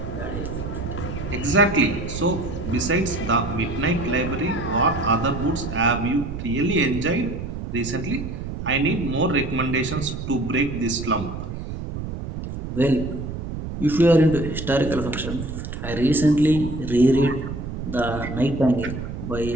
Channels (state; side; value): noise; right; rumble, 7 dB below the sound